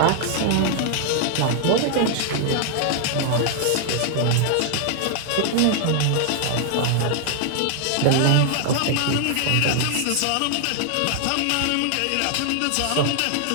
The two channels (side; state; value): both; different; correlation 0.00